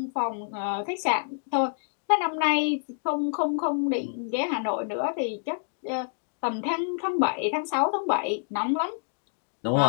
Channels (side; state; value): right; silent; digital silence